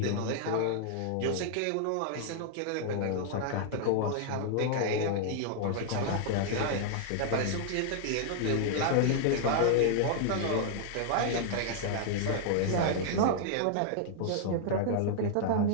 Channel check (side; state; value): both; different; correlation -0.01